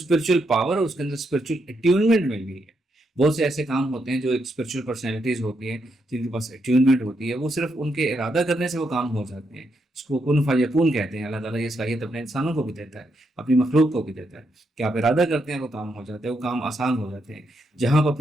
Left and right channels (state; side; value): normal; both; correlation 0.80